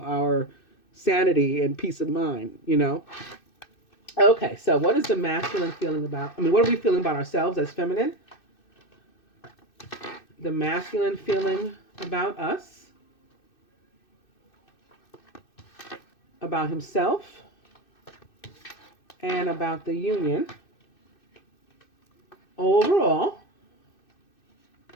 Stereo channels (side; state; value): right; late; 2.6 ms